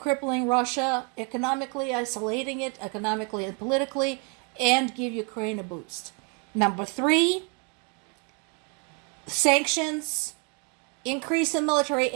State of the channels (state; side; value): quieter; left; 33.9 dB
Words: Russia, economically isolating it, economically and politically, and give Ukraine a boost. Number three, sanctions, increase in military